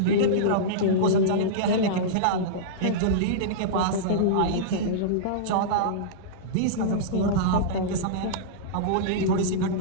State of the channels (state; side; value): different; both; correlation -0.04